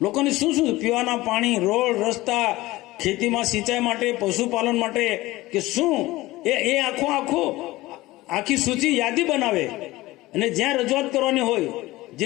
શું પીવાના પાણી, રોડ રસ્તા, ખેતીમાં સિંચાઈ માટે, પશુપાલન માટે કે શું એ આખી સૂચિ યાદી બનાવે અને જ્યાં રજૂઆત કરવાની હોય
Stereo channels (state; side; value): quieter; right; 18.7 dB